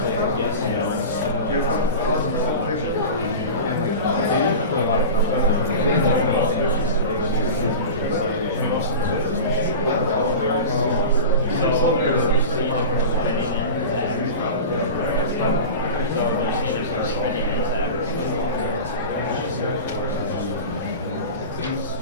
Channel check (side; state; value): both; inverted; correlation -0.31